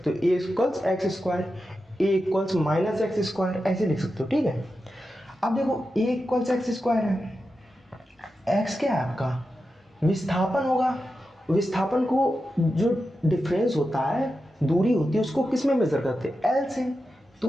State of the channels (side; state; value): both; normal; correlation 0.90